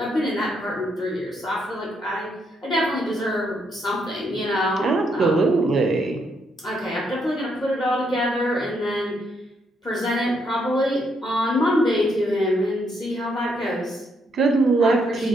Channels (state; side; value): normal; both; correlation 0.75